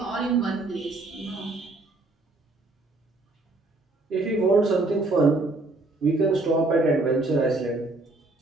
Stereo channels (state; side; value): quieter; left; 3.0 dB